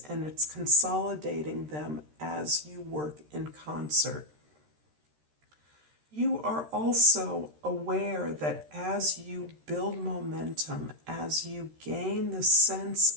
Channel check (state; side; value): late; left; 13 ms